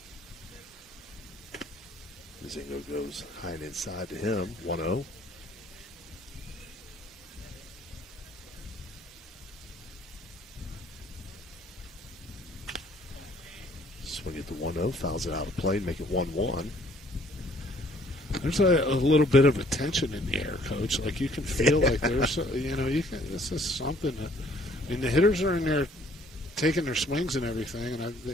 Mazingo goes high and inside to him, 1-0. Swing it to 1-0, fouls it out of play, make it 1-1. There's a little bit of a tension in the air, Coach. Like, you can feel like there's, this is something that, I mean, the hitters are in there taking their swings and everything, and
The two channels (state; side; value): normal; both; correlation 0.60